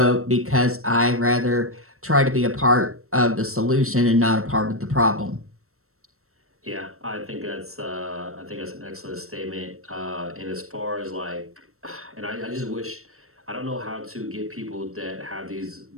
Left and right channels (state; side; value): late; left; 0.63 ms